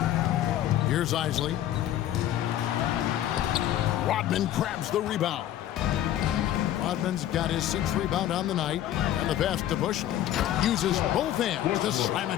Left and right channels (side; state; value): right; quieter; 12.2 dB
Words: Here's Isley. Rodman grabs the rebound. Rodman's got his 6th rebound on the night. And the pass to Bushler. Uses both hands to slam